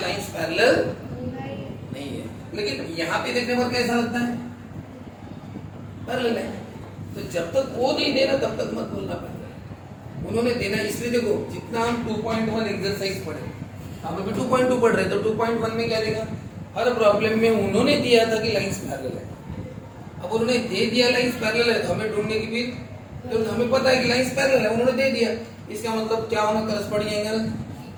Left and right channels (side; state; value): both; identical; correlation 1.00